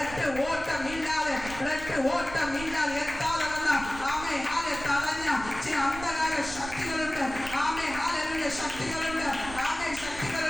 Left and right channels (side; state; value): right; noise; rumble, 12 dB below the sound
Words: ഓട്ടമില്ലാതെ, ബ്ലഡ് ഓട്ടമില്ലാതെ എത്താതെ വന്ന ആമേ ആലെ തടഞ്ഞ ചില അന്ധകാര ശക്തികളുണ്ട്. ആമേ ഹല്ലേലൂയ ശക്തികളുണ്ട്, ആമേ